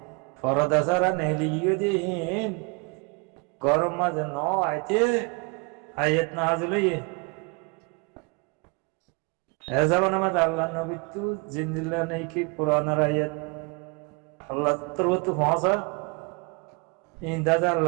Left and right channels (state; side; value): quieter; left; 31.4 dB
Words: ফরদা সারা নেলি গিয়ে দিয়ে গরম মাঝে ন আইতে আয়াত নাজিল হইয়ে এ যাবেন আমাদের আল্লাহ নবী তু জিন্দিল্লা নেই কি কোরআনের আয়াত আল্লাহ তোর তো পৌঁছা ইন্দাজা